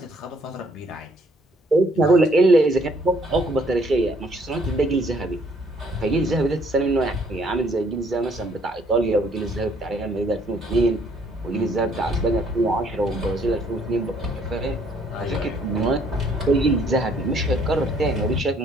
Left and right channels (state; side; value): normal; both; correlation 0.64